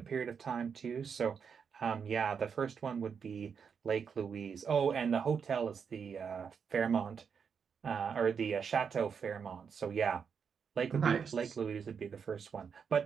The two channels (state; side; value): quieter; left; 6.5 dB